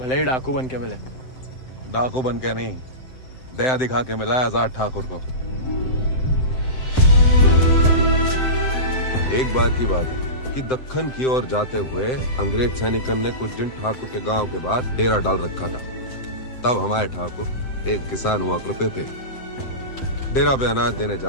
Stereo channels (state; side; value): late; right; 7.8 ms